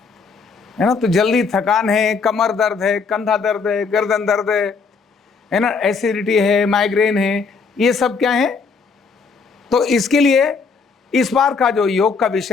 है ना। तो जल्दी थकान है, कमर दर्द है, कंधा दर्द है, गर्दन दर्द है ना, एसिडिटी है, माइग्रेन है, ये सब क्या है? तो इसके लिए इस बार का जो योग का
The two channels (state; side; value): quieter; right; 5.0 dB